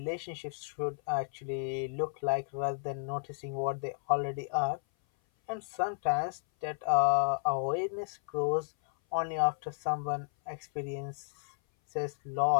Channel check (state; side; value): silent; right; 56 dB below the other